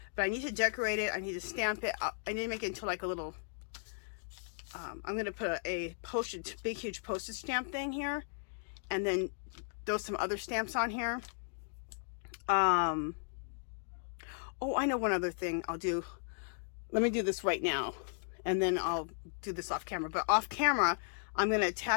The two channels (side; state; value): right; silent; digital silence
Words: But I need to decorate it. I need to stamp it. I need to make it into like a little, I'm going to put a postage, big huge postage stamp thing here. And then throw some other stamps on here. Oh, I know one other thing I'll do. Let me do this right now. And then I'll do this off camera. But off camera, I'm going to